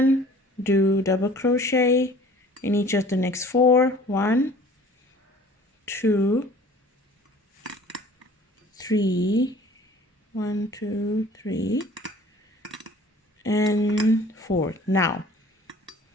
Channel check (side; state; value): both; normal; correlation 0.49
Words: do double crochet in each of the next 4. 1, 2, 3, 1, 2, 3, and 4. Now